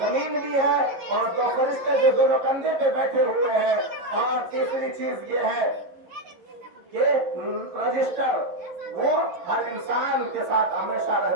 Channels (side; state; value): left; late; 11 ms